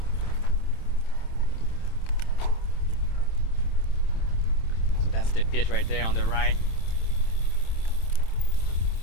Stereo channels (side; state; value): right; late; 27 ms